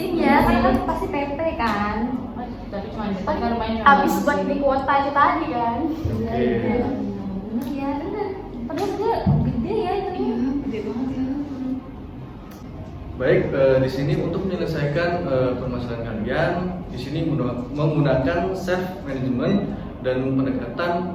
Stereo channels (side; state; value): both; identical; correlation 1.00